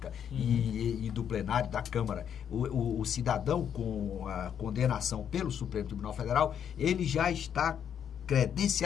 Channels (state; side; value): quieter; right; 8.6 dB